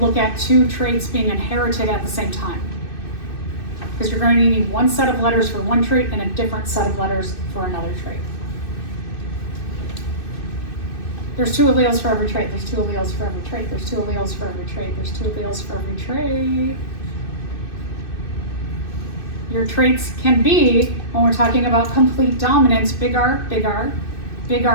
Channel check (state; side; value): late; right; 2.6 ms